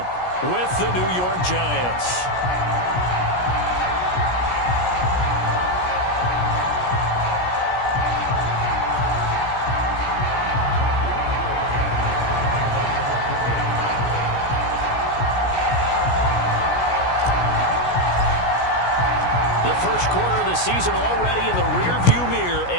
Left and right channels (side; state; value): right; late; 17 ms